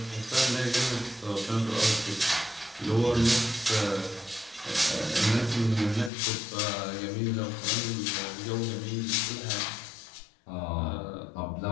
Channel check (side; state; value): right; drops out; at 6.1 s